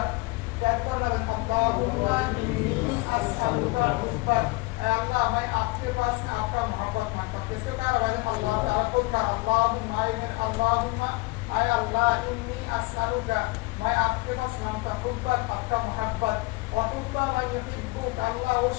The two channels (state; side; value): quieter; right; 23.7 dB